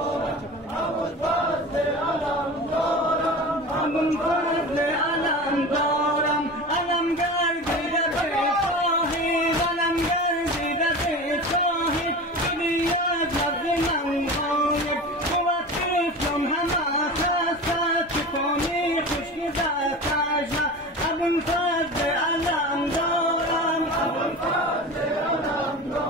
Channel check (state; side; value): normal; both; correlation 0.32